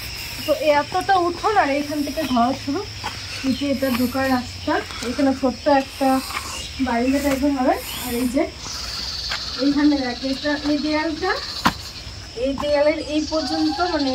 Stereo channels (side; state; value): both; identical; correlation 1.00